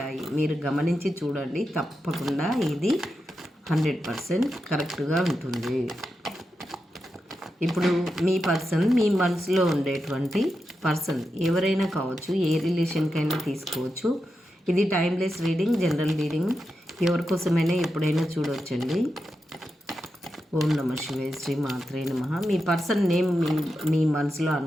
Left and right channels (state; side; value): normal; both; correlation 0.88